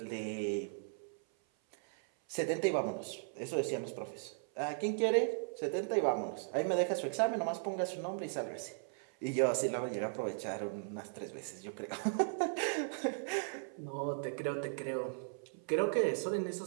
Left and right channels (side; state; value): left; silent; 53 dB below the other